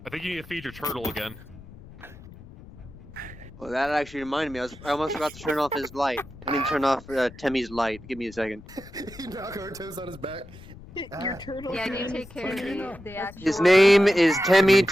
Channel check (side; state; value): left; noise; rumble, 18 dB below the sound